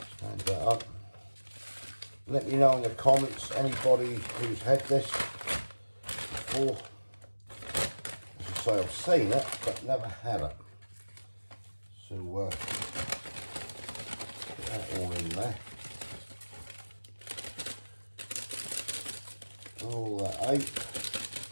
Stand that up. Let me know in the comments, anybody who's had this before. As I say, I've seen it, but never had it. So, get that all in there. All that out.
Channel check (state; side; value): inverted; both; correlation -1.00